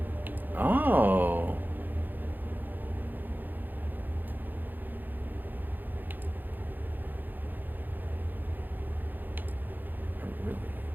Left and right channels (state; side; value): late; left; 0.087 ms